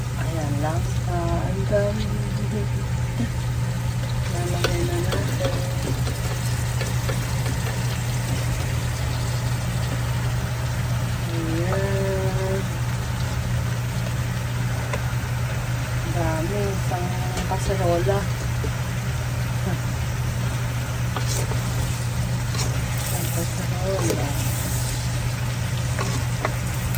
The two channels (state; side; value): identical; both; correlation 1.00